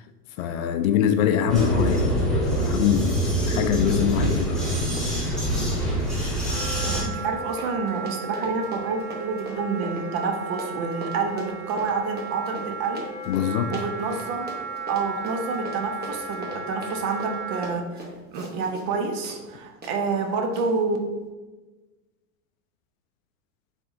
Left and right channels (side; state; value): both; normal; correlation 0.05